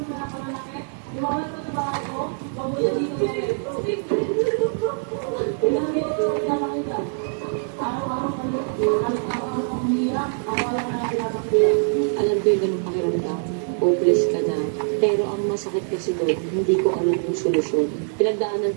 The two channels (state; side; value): silent; left; digital silence